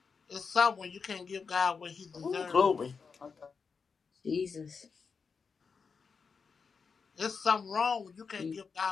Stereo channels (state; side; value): quieter; right; 5.4 dB